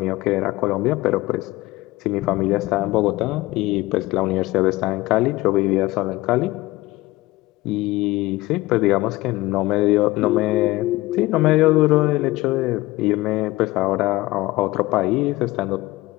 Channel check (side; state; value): right; quieter; 19.2 dB